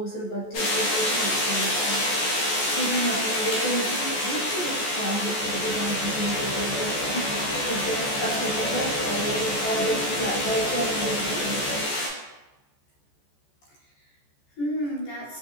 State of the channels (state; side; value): late; right; 14 ms